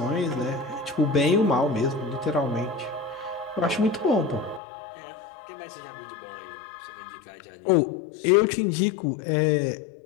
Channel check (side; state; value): right; drops out; at 4.6 s